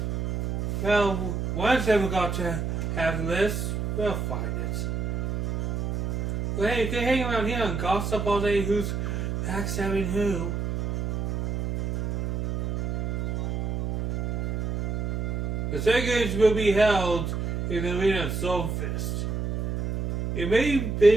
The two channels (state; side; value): noise; right; hum, 1 dB below the sound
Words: Well, one's never got to have this. We'll find it. Well, hey, you can hang around here and gossip all day who's backstabbing who. The second games will be held in the arena of Stormfist. It may have